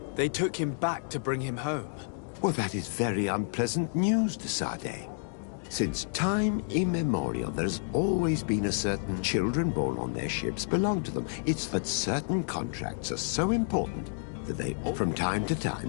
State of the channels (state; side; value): silent; right; digital silence